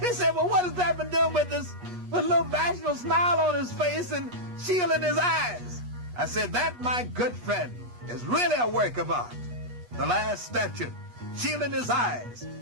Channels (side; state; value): left; late; 8.3 ms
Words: said, well, what has that been doing with this, with a little bashful smile on his face and shield in his eyes? I said, that, my good friend, is really a work of art. The last statue, shield in his eyes,